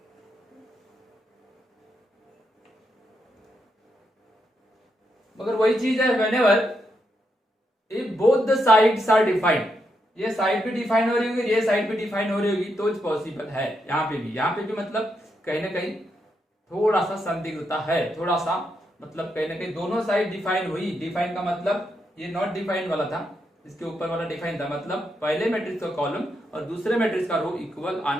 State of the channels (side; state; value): both; normal; correlation 0.81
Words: मगर वही चीज है whenever if both the sides are defined, ये साइड भी डिफाइन हो रही होगी, ये साइड भी डिफाइन हो रही होगी तो पॉसिबल है। यहाँ पे भी मतलब कहीं ना कहीं थोड़ा सा संदिग्धता है, थोड़ा सा मतलब कहीं ना कहीं दोनों साइड डिफाइन हुई। डिफाइन का मतलब ये नॉट डिफाइन वाला था, इसके ऊपर वाला डिफाइन था, मतलब पहले मैट्रिक्स का कॉलम और दूसरे मैट्रिक्स का रो इक्वल